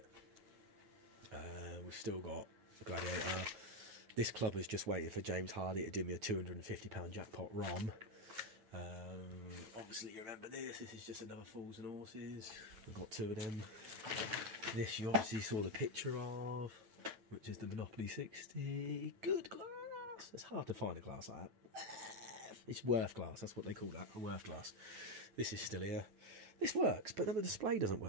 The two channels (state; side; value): late; left; 9.2 ms